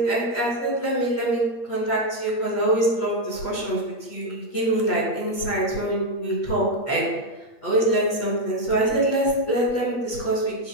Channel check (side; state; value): right; late; 8.5 ms